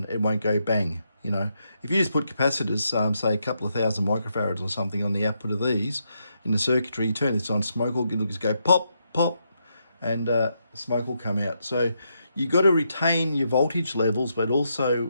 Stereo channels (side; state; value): both; inverted; correlation -0.80